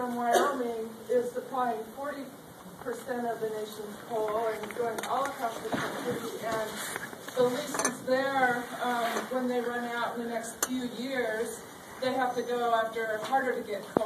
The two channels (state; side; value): identical; both; correlation 1.00